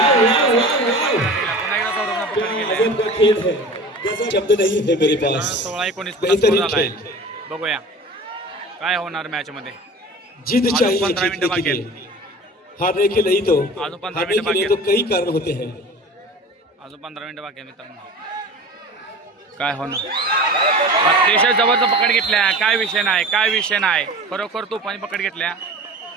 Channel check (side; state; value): both; normal; correlation 0.38